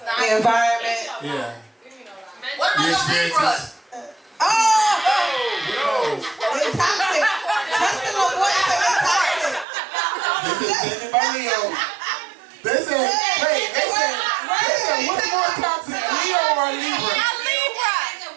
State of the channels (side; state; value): left; drops out; at 9.7 s